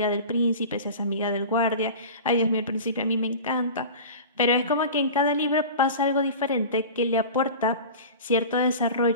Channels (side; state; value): both; inverted; correlation -0.34